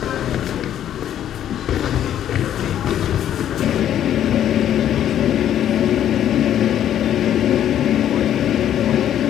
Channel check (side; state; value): right; quieter; 10.7 dB